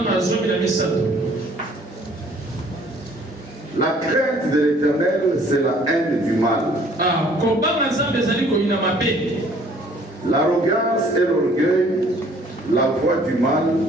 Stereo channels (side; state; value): both; normal; correlation 0.57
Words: La crainte de l'Éternel, c'est la haine du mal. L'arrogance et l'orgueil, la voix du mal